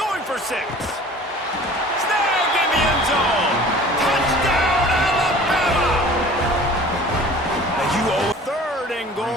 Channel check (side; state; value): both; normal; correlation 0.45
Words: for 6. Snag in the end zone. Touchdown Alabama! Now you owe... 3rd and